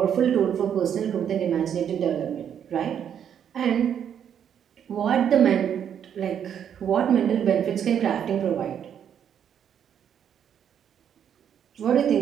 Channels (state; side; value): quieter; left; 8.8 dB